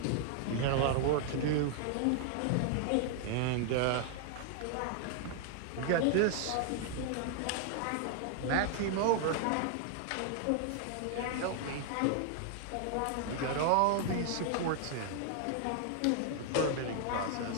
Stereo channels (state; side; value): different; both; correlation 0.00